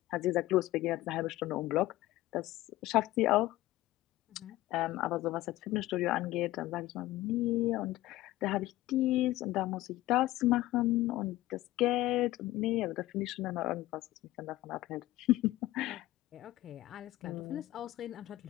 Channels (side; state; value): right; quieter; 16.6 dB